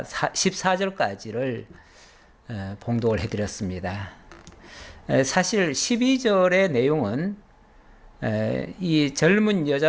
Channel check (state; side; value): identical; both; correlation 1.00